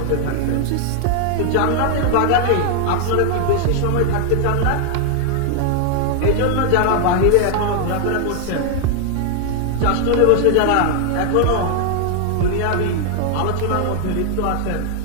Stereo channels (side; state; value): both; different; correlation 0.00